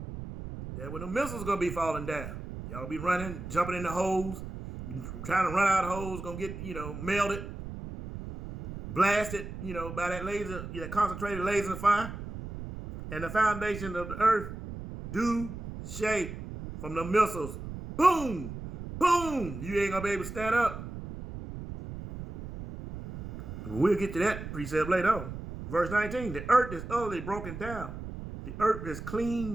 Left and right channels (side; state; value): right; noise; rumble, 9 dB below the sound